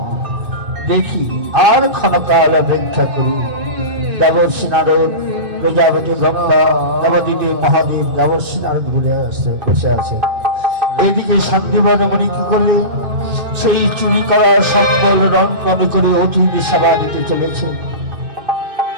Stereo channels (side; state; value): left; late; 2.5 ms